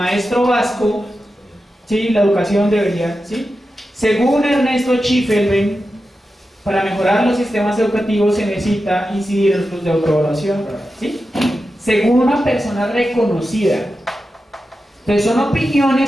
vasco, ¿sí? La educación debería, ¿sí? Según Ernesto Schiffelbein, para mejorar los sistemas educativos se necesita incidir en los de autoevaluación, ¿sí? Según una persona reconocida. Entonces son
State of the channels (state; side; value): normal; both; correlation 0.91